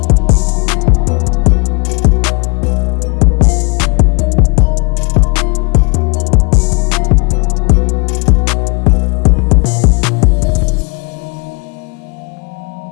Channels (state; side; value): quieter; right; 30.9 dB